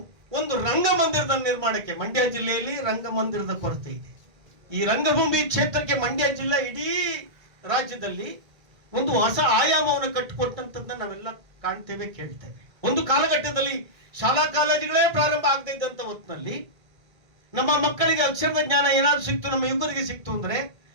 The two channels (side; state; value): left; late; 1.5 ms